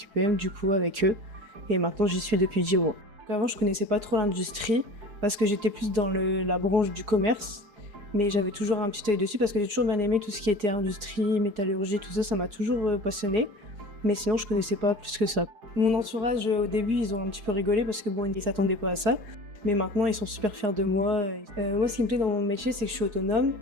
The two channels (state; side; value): late; left; 4.8 ms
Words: du coup avec eux et maintenant j'y suis depuis 10 mois. Avant je connaissais pas trop l'industrie parce que j'étais plus dans la branche du commerce, mais j'avais toujours un petit œil dessus parce que j'ai toujours bien aimé tout ce qui était industrie, métallurgie, tout ça, ça m'a toujours passionné. Mais sinon, je connaissais pas plus que ça. Mon entourage, au début, ils ont un petit peu rigolé parce que bon, ils s'attendaient pas à ça. Mais maintenant, ils sont super fiers de moi. Moi, ce qui me plaît dans mon métier, c'est que je suis autonome.